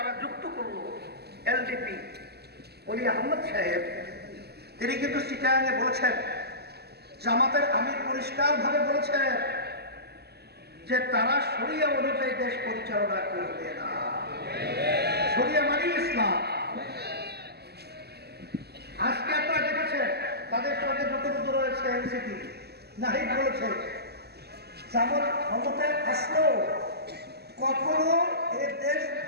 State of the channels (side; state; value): left; late; 0.47 ms